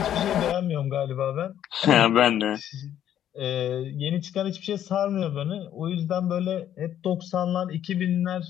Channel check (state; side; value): quieter; right; 10.7 dB